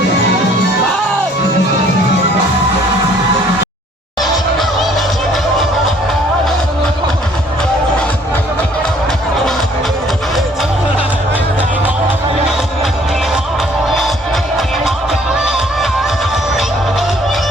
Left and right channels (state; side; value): normal; both; correlation 0.59